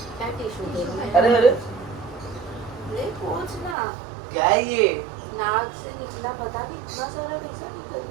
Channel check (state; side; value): drops out; left; at 3.8 s